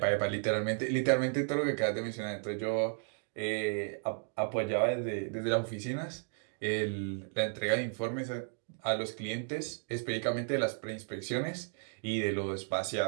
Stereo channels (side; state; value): left; silent; 55 dB below the other